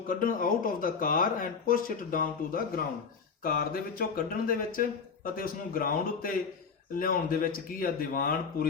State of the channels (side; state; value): right; quieter; 5.6 dB